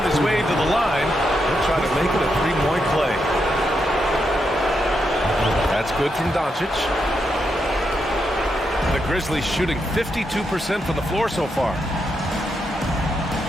his way to the line. He'll try to make it a 3-point play. good from Doncic. The Grizzlies shooting 52% from the floor so far.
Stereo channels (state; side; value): normal; both; correlation 0.83